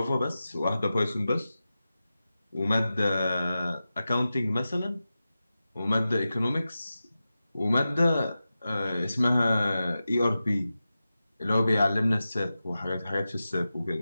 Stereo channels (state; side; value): inverted; both; correlation -0.93